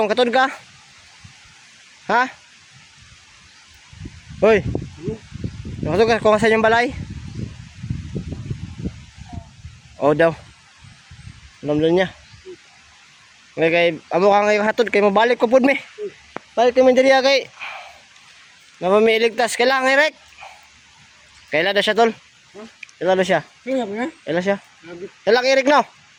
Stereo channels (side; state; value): both; identical; correlation 1.00